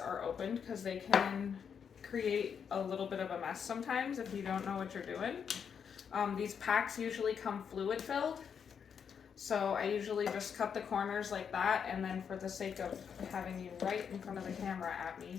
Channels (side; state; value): right; quieter; 7.1 dB